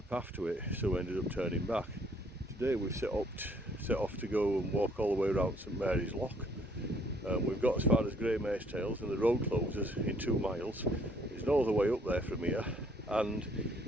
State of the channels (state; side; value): normal; both; correlation 0.64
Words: path to it, so we ended up turning back. Today we've set off to go and walk all the way around St Mary's Loch. We've got as far as Grey Mare's Tails and the road closes in 2 miles. There's no other way up there from here, and